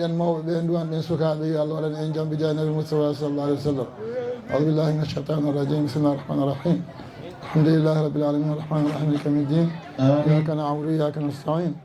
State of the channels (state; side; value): identical; both; correlation 1.00